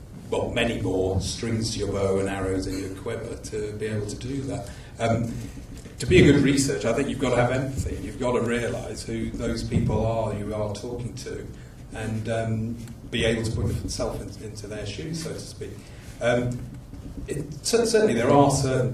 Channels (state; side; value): identical; both; correlation 1.00